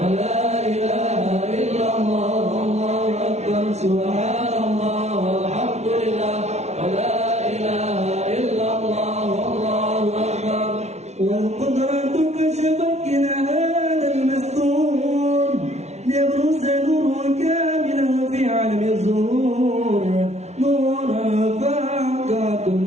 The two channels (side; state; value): left; late; 0.32 ms